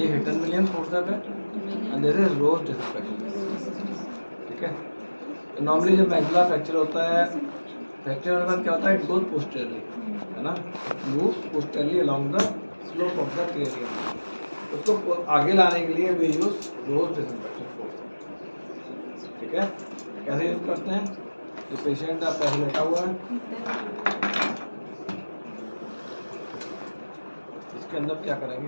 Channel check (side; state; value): both; inverted; correlation -1.00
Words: हेटन विलियम्स फोर्सेस है and this is Rowe's disimpaction. ठीक है। तो नॉर्मली जब मैक्सिला फ्रैक्चर होता है, फ्रैक्चर होने के बाद क्या होता है, इट गोज पोस्टेरली, है ना, moves posteriorly along the slope of the cranium. उसको आगे लाने के लिए we use Rowe's disimpaction force. ठीक है। कैसे यूज करते हैं, ये पेशेंट आपका ऐसे लेटा हुआ है, इसके अंदर क्या करेंगे,